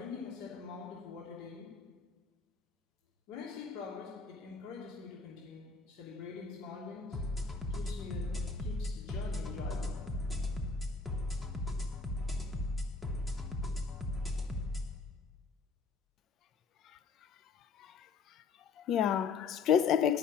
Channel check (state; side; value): quieter; right; 4.8 dB